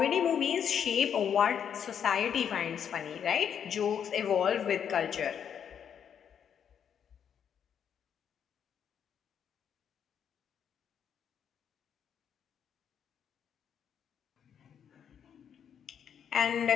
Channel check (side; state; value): right; quieter; 8.2 dB